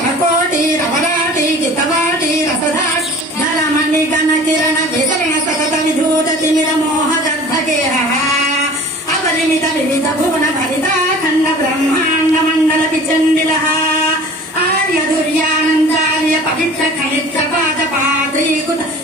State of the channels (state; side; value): normal; both; correlation 0.44